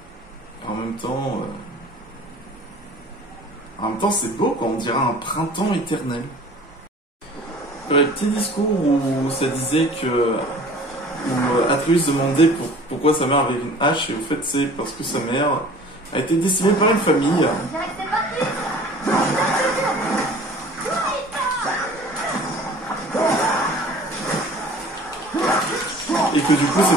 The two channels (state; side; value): normal; both; correlation 0.47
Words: En même temps, c'est beau quand on dirait un printemps éternel. Il y avait un petit discours où ça disait que où Atreus demandait pourquoi sa mère avait une hache, et au fait c'est parce que sa mère a été décimée par une famille. Et que du coup